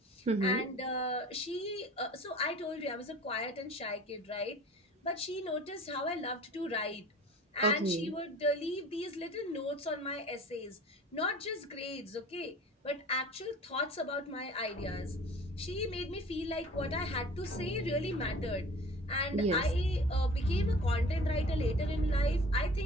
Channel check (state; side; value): normal; both; correlation 0.44